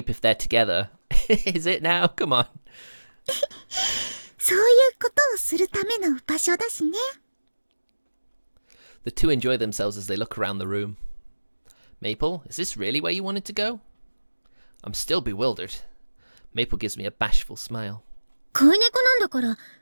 if they're together. Is it now? Come on. そういうことをするための場所だしね。 The two enjoy themselves as they look around the room. Maple, is this really where you wanted to go? I'm still bewildered. Maple gives me a bashful smile. 飼い猫なんだから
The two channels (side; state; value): both; inverted; correlation -1.00